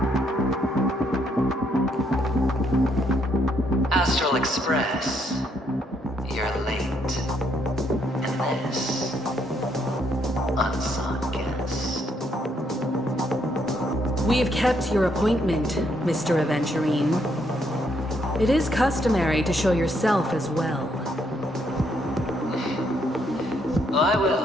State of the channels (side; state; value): both; normal; correlation 0.73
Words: Astral Express, you're late. And this, unsung guest. We have kept your appointment, Mr. Aventurine. It is customary to show yourself as well. I